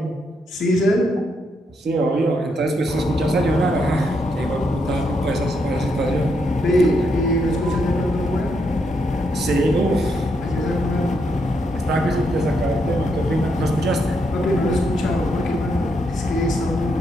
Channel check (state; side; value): normal; both; correlation 0.78